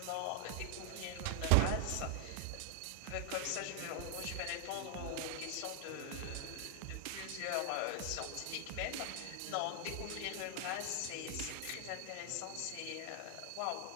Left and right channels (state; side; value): different; both; correlation 0.00